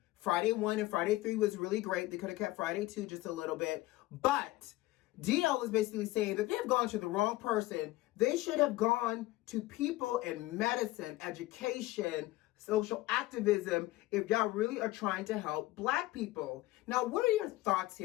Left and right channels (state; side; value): quieter; right; 17.8 dB